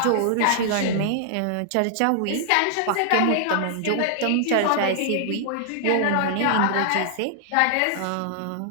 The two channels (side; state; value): both; different; correlation -0.01